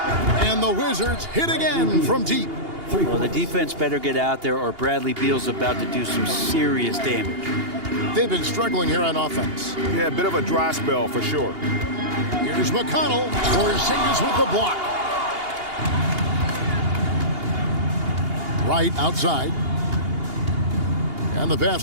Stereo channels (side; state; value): left; late; 2.8 ms